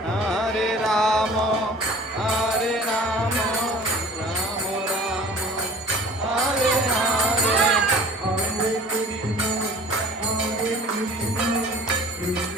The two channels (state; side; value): normal; both; correlation 0.46